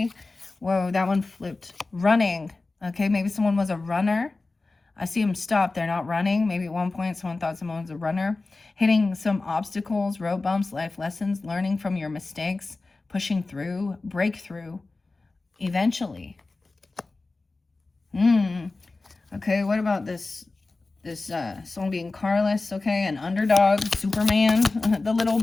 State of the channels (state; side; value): quieter; right; 3.5 dB